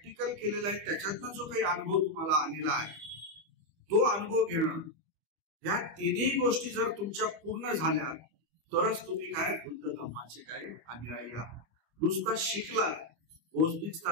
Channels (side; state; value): left; late; 25 ms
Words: केलेला आहे त्याच्यातनं जो काही अनुभव तुम्हाला आलेला आहे तो अनुभव घेणं, या तिन्ही गोष्टी जर तुमच्या पूर्ण झाल्या तरच तुम्ही काय बुद्ध धम्माचे काय अनुयायी आहात. नुसता शिकला बौद्धिक